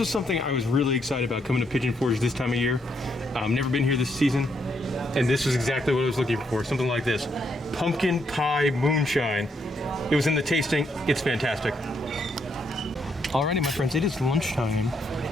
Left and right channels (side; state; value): both; normal; correlation 0.76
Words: something I was really excited about coming to Pigeon Forge this time of year. Never been here this season, and this was exactly what I was looking for. Something like this. Pumpkin pie moonshine. It was in the tasting. It's fantastic. Alrighty, my friends, it is lunchtime.